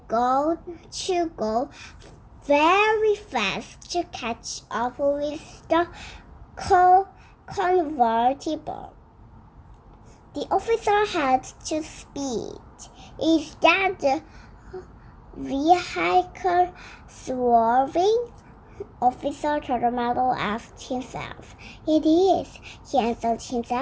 go very fast to catch up with the convertible. The officer had to speed. Is that the vehicle swerving? Officer Chartermellow asked himself. It is, he answered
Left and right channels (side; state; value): both; identical; correlation 1.00